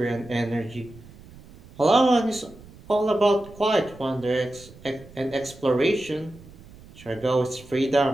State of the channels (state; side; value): noise; right; rumble, 21 dB below the sound